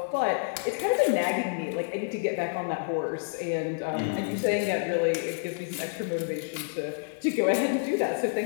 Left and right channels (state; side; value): silent; right; digital silence